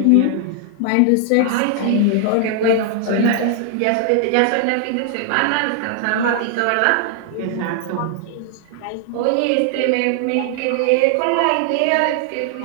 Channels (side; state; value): both; different; correlation 0.00